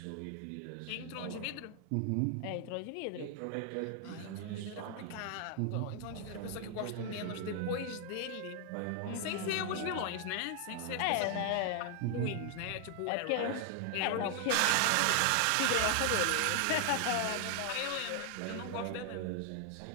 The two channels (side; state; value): both; different; correlation 0.00